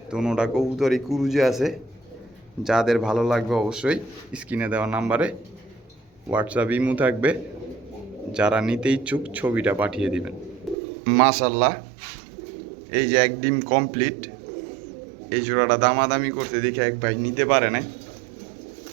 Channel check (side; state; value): left; drops out; at 10.8 s